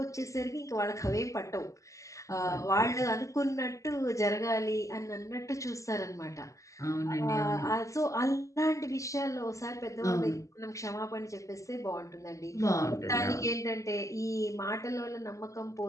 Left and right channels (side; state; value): right; late; 0.16 ms